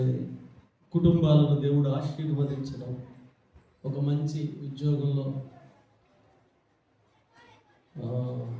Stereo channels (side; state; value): both; identical; correlation 1.00